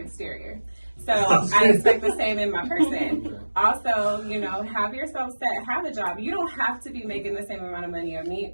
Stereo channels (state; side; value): inverted; both; correlation -1.00